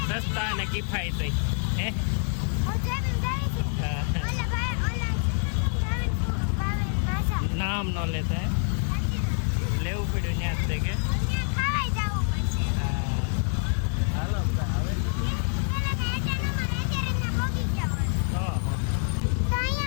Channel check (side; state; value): right; silent; 56 dB below the other